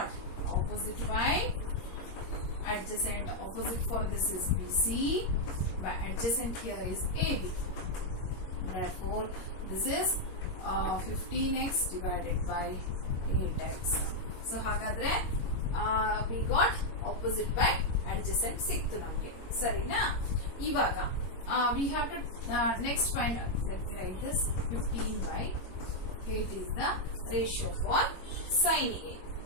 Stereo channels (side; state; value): right; late; 21 ms